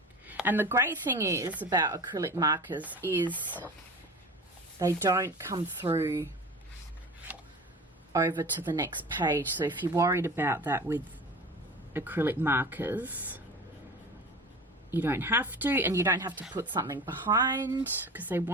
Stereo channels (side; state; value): both; normal; correlation 0.36